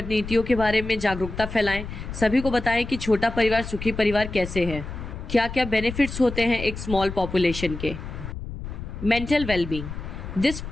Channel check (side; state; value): left; noise; rumble, 9 dB below the sound